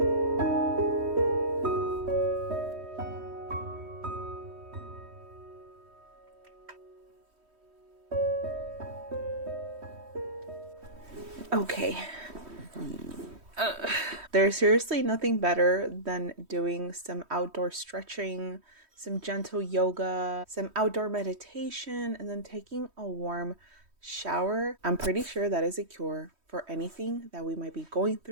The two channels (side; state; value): left; late; 3.1 ms